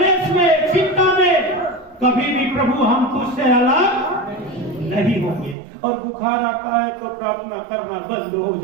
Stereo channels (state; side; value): drops out; left; at 5.6 s